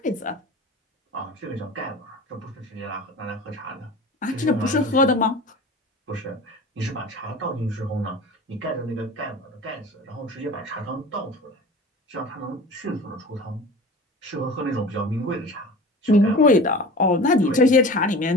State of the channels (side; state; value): both; normal; correlation 0.37